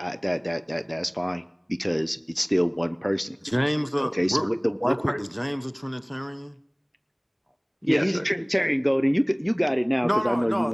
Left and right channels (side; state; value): both; identical; correlation 1.00